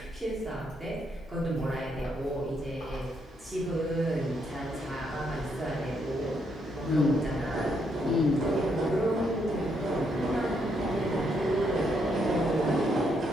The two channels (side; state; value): both; normal; correlation 0.76